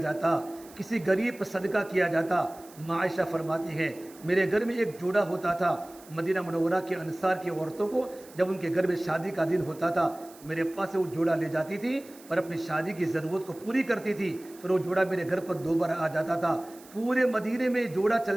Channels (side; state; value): right; noise; hiss, 22 dB below the sound